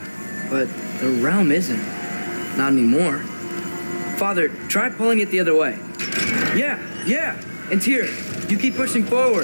but the realm isn't. Not anymore. Father, try pulling it the other way. Yeah, and here, you keep pushing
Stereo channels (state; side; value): inverted; both; correlation -1.00